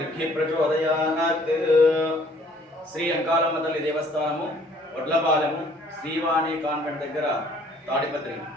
प्रचोदयात्। శ్రీ అంకాలమ్మ తల్లి దేవస్థానము వడ్లపాలెము శ్రీవాణి కాన్వెంట్ దగ్గర తాడిపత్రి.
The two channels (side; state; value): both; normal; correlation 0.58